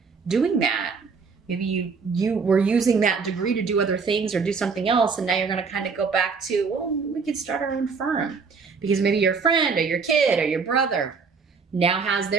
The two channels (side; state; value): left; quieter; 5.1 dB